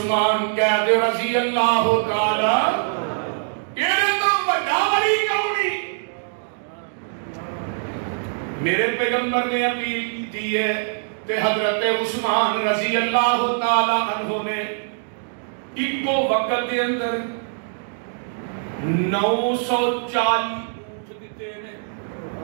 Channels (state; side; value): silent; left; digital silence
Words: قید رضی اللہ تعالی یہ تو بڑا ولی کونی. میرے پیغمبر نے اپیل کی تھی ہے تے حضرت عثمان رضی اللہ تعالی عنہ نے ایک وقت دے اندر 940 اونٹ دیتے ہیں